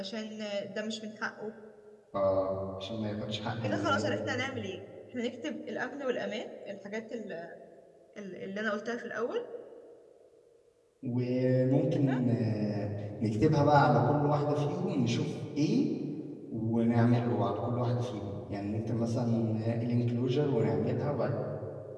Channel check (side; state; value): both; identical; correlation 1.00